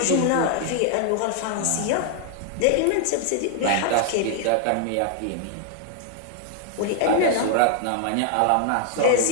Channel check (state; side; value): different; both; correlation 0.00